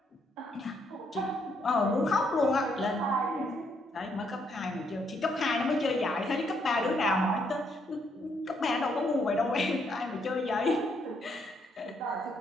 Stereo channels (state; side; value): normal; both; correlation 0.73